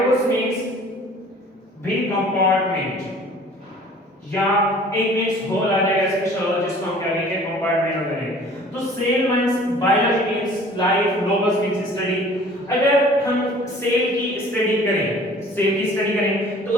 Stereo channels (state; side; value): normal; both; correlation 0.50